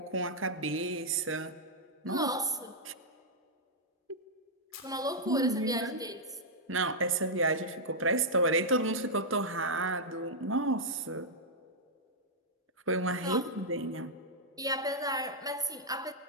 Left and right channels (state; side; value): normal; both; correlation -0.06